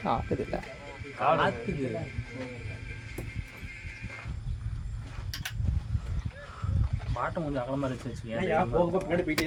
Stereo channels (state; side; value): identical; both; correlation 1.00